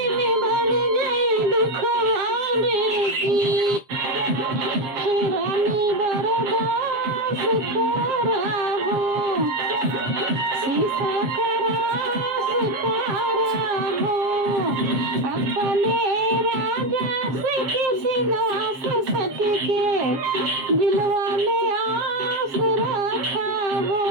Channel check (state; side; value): late; left; 7.4 ms